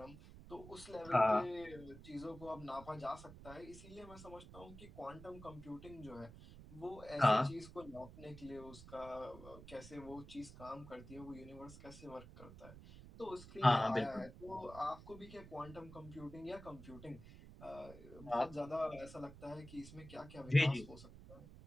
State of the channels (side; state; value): right; noise; rumble, 16 dB below the sound